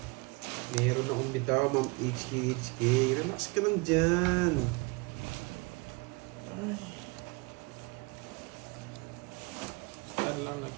Meron akong bitaw, Ma'am HK. Relax ka lang dyan. Saan lang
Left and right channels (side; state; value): left; quieter; 27.9 dB